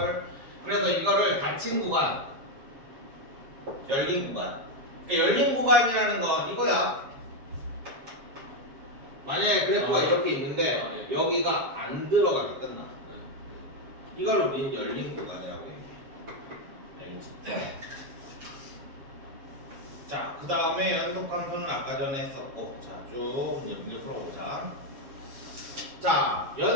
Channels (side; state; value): left; late; 7.3 ms